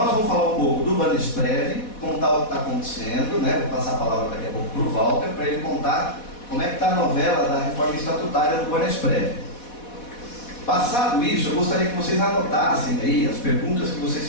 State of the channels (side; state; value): right; late; 4.1 ms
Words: vamos falar um pouco do Banesprev, contar o que está acontecendo, vou passar a palavra daqui a pouco para o Walter, para ele contar como é que está a novela da reforma estatutária do Banesprev. Passado isso, eu gostaria que vocês anotassem aí as perguntas que